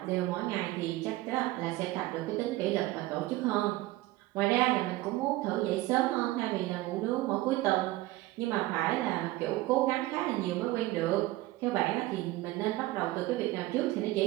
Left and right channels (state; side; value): quieter; left; 18.1 dB